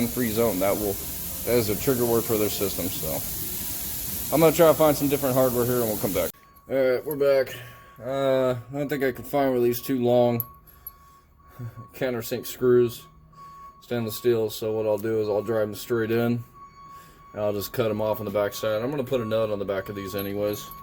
zone. That is a trigger word for their system. So I'm gonna try to find some different hardware here, and we'll come back. All right, we're back. I don't think I can find one of these too long countersink screws, stainless steel. So what I'll do is I'll drive them straight in, and I'll just cut them off on the back side. I'm gonna put a nut on the back of these anyways,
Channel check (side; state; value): both; identical; correlation 1.00